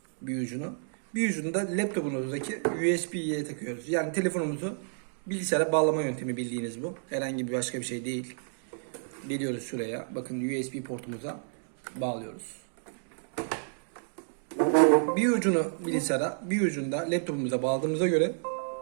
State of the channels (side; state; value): left; silent; digital silence